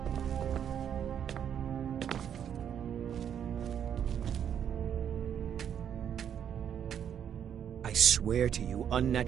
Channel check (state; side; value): quieter; left; 8.9 dB